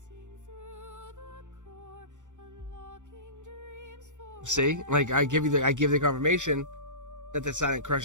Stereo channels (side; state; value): left; late; 0.85 ms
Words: See, like I give the confirmation that the silent